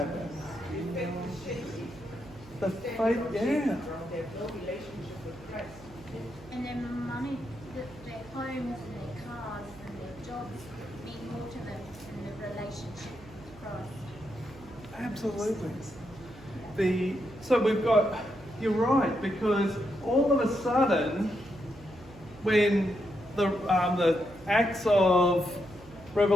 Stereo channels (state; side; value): noise; right; hum, 20 dB below the sound